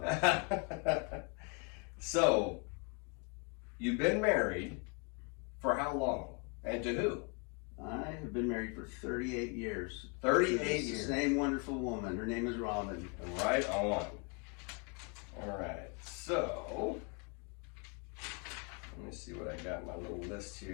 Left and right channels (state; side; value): quieter; right; 33.6 dB